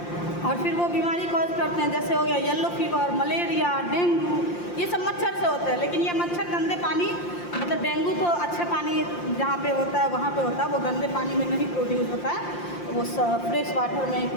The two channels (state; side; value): late; right; 5.7 ms